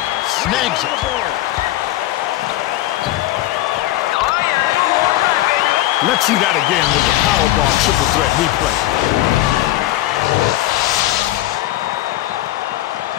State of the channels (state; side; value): quieter; right; 15.5 dB